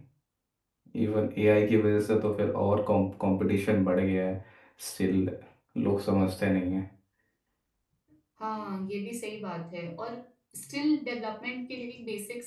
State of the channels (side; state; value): both; identical; correlation 1.00